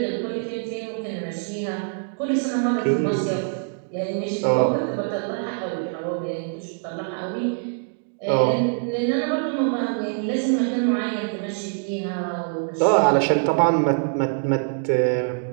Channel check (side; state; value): left; silent; 63 dB below the other